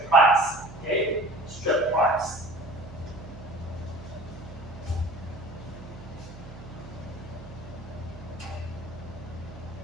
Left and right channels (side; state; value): right; noise; hum, 15 dB below the sound